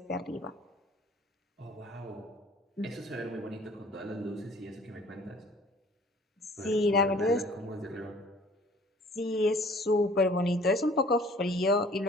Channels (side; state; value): both; normal; correlation 0.52